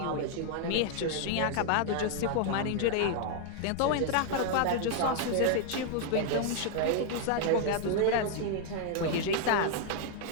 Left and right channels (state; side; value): different; both; correlation 0.00